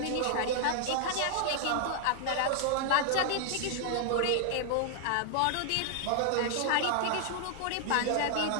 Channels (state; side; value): different; both; correlation 0.00